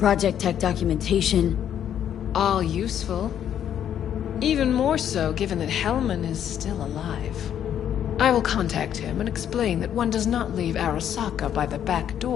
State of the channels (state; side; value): quieter; right; 9.8 dB